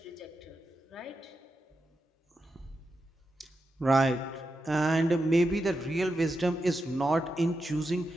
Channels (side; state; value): both; normal; correlation 0.87